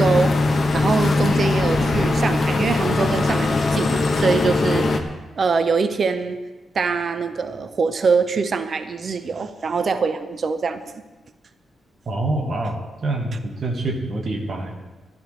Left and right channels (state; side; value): normal; both; correlation 0.85